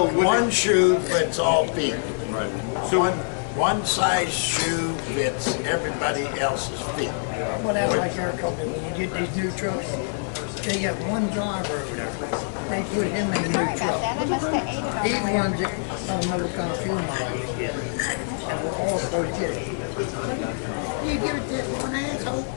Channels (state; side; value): silent; right; digital silence